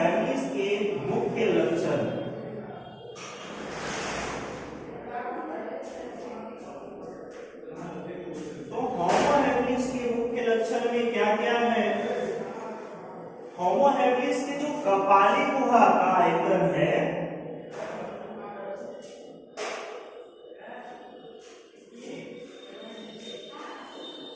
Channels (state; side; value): identical; both; correlation 1.00